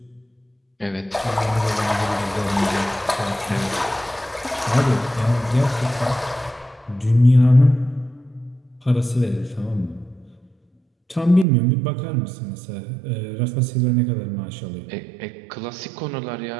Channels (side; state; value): left; drops out; at 11.5 s